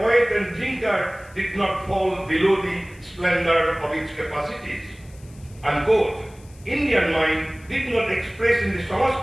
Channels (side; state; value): left; noise; hiss, 27 dB below the sound